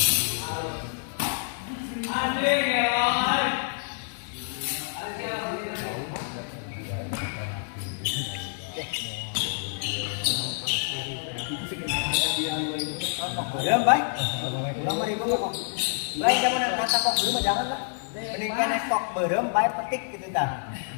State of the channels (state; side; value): silent; right; digital silence